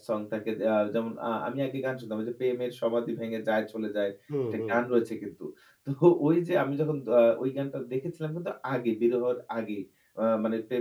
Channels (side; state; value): both; identical; correlation 1.00